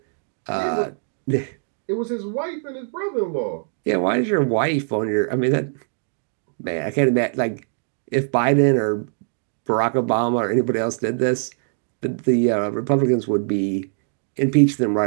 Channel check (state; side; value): silent; left; digital silence